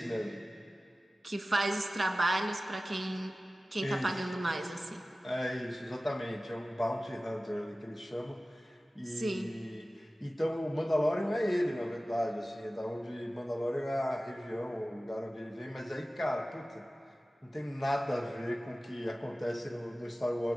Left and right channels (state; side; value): normal; both; correlation 0.97